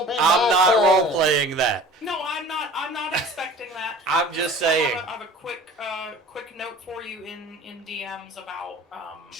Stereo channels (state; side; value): normal; both; correlation 0.44